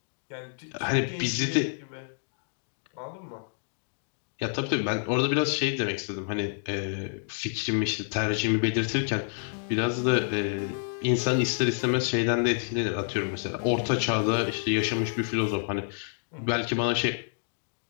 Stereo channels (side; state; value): right; silent; digital silence